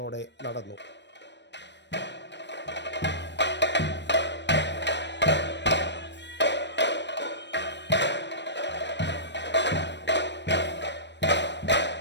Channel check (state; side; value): late; right; 0.51 ms